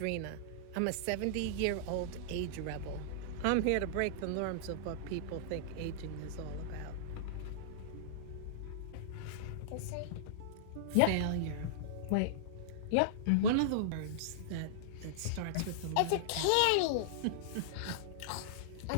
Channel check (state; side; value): different; both; correlation -0.02